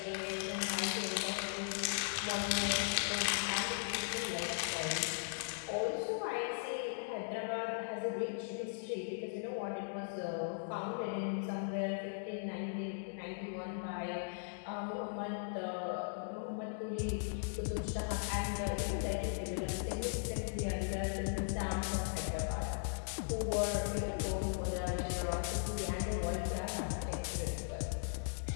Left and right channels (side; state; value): right; silent; digital silence